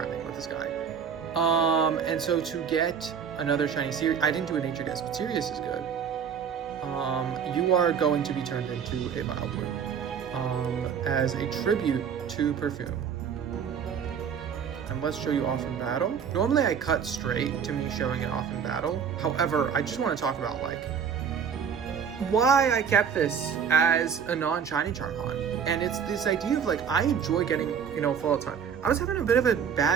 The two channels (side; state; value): left; quieter; 7.3 dB